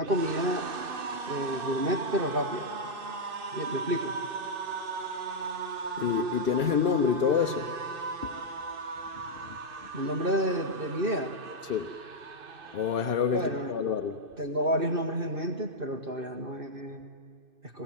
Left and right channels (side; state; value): left; late; 2.6 ms